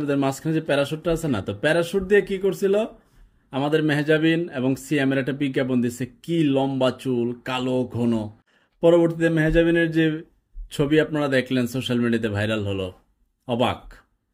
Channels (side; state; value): both; identical; correlation 1.00